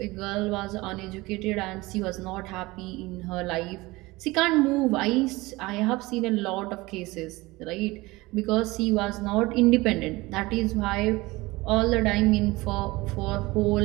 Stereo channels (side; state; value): left; quieter; 21.3 dB